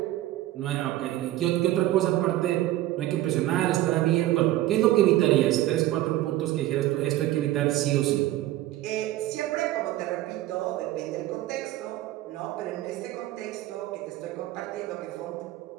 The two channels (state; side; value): quieter; left; 15.1 dB